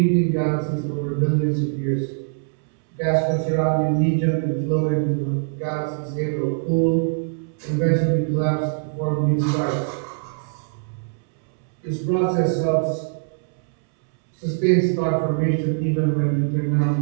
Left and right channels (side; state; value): left; silent; 64 dB below the other